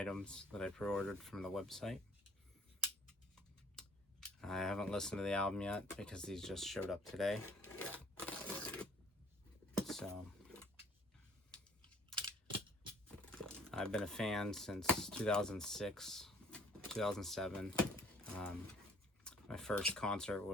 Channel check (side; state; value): both; normal; correlation 0.57